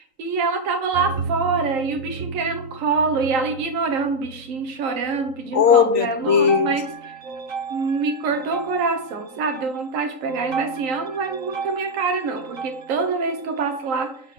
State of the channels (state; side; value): late; left; 3.8 ms